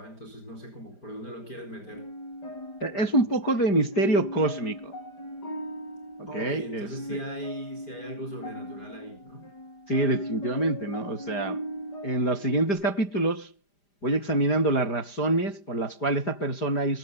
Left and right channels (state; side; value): late; right; 5.0 ms